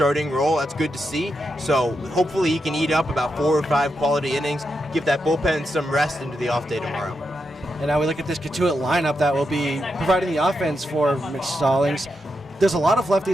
role. That's good to see. So hopefully he can eat up about 4 or 5 quality innings, give that bullpen some rest into the off day tomorrow. And now we look at this Cotuit lineup that will be providing the offense for Mitch Stallings. There's a lot of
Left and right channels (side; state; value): both; normal; correlation 0.85